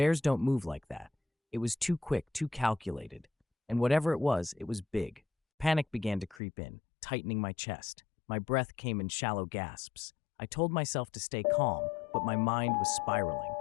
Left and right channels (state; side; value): drops out; right; at 6.4 s